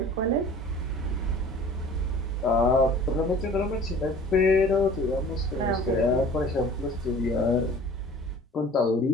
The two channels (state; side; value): normal; both; correlation 0.46